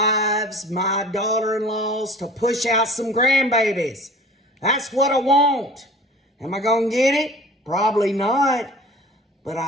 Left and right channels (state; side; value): normal; both; correlation 0.43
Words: my daughter-in-laws, to push out some grandbabies. That's what I want. Am I going to get it? Probably not. But